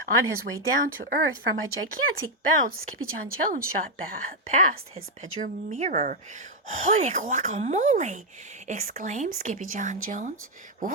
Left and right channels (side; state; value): both; normal; correlation 0.00